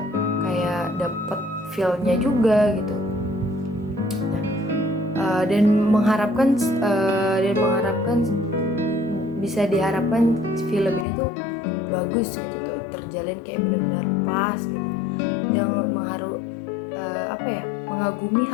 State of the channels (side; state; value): right; drops out; at 11.1 s